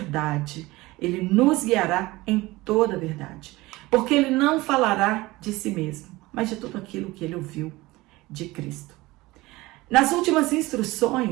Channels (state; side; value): quieter; left; 20.2 dB